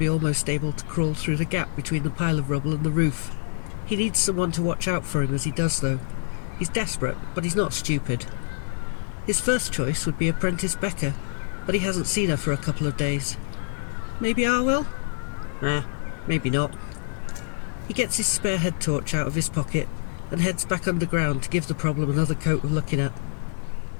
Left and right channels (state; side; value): silent; right; 61 dB below the other